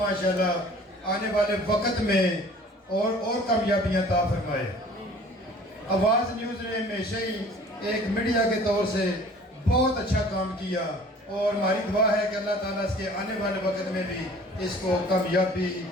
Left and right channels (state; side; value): normal; both; correlation 0.49